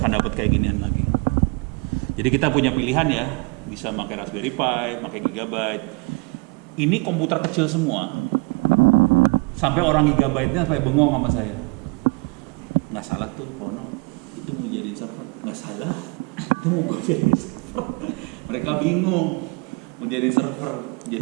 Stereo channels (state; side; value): quieter; left; 29.2 dB